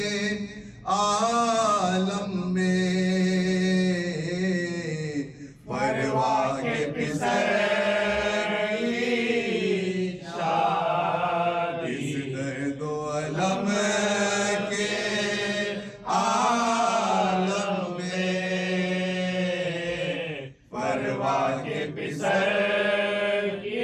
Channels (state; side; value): identical; both; correlation 1.00